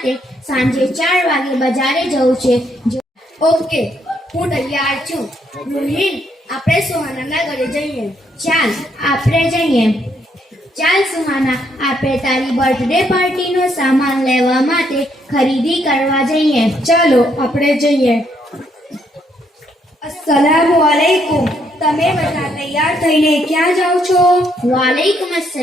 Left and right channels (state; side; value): normal; both; correlation 0.73